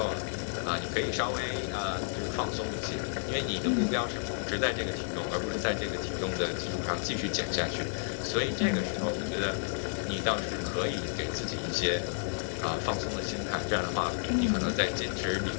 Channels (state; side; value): silent; right; 57 dB below the other